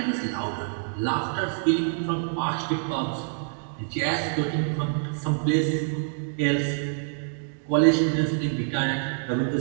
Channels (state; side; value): silent; left; digital silence